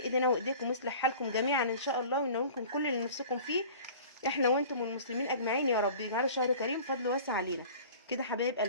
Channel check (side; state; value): both; inverted; correlation -0.42